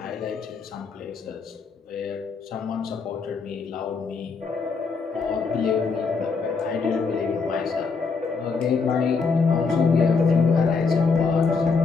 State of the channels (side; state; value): right; quieter; 4.8 dB